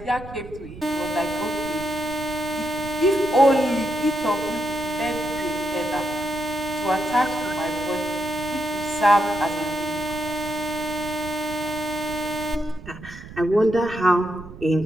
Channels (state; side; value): noise; right; rumble, 15 dB below the sound